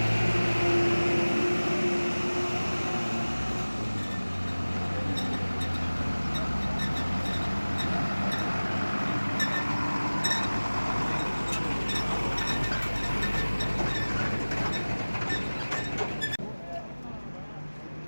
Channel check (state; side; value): inverted; both; correlation -1.00